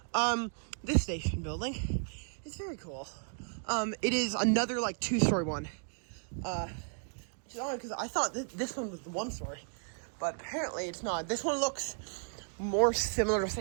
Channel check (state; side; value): silent; left; 55 dB below the other